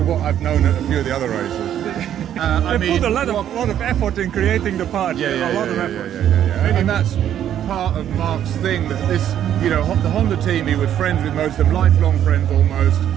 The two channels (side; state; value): left; quieter; 10.5 dB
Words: what I've known at a few of the other races. They put a lot of effort in creating the party. Yeah. Effort. And that's part of Mark's thing. That this, the Honda team, he was friends with most of them, lifelong friends almost.